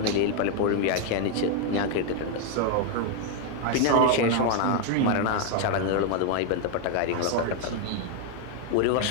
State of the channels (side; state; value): both; different; correlation 0.00